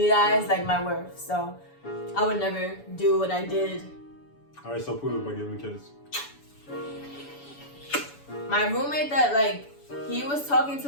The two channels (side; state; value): right; late; 7.0 ms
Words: like, my worth. So, I would never do what I did. Alright, so prove it by giving me a kiss. My roommate that like he was talking